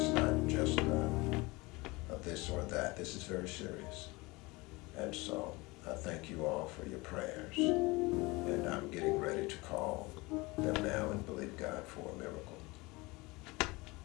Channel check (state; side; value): quieter; right; 23.6 dB